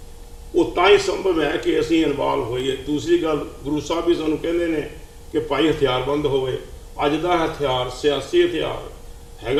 ਉਹ ਤਾਂ ਹੀ ਸੰਭਵ ਹੈ ਕਿ ਅਸੀਂ ਇਨਵੋਲਵ ਹੋਈਏ। ਦੂਸਰੀ ਗੱਲ, ਗੁਰੂ ਸਾਹਿਬ ਵੀ ਸਾਨੂੰ ਕਹਿੰਦੇ ਨੇ ਕਿ ਭਾਈ ਹਥਿਆਰਬੰਦ ਹੋਵੇ। ਅੱਜ ਦਾ ਹਥਿਆਰ ਸਿਆਸੀ ਹਥਿਆਰ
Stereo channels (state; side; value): identical; both; correlation 1.00